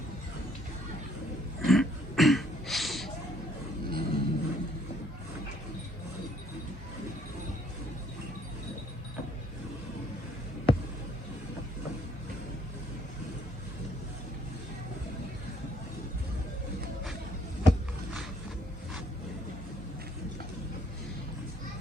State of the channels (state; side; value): normal; both; correlation 0.65